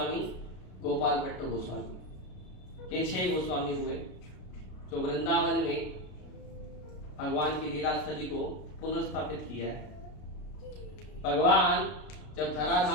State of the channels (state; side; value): late; right; 33 ms